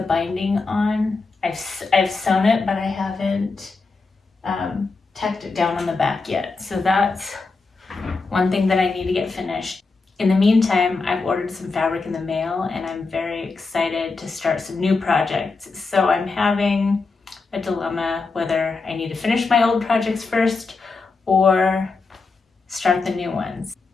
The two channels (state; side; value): quieter; right; 4.1 dB